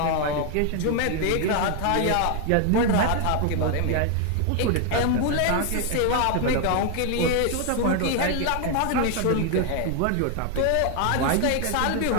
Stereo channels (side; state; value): both; different; correlation 0.00